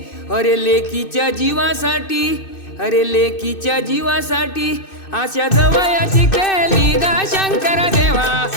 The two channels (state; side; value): late; right; 2.6 ms